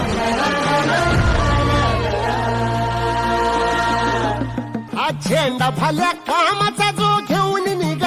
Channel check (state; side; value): identical; both; correlation 1.00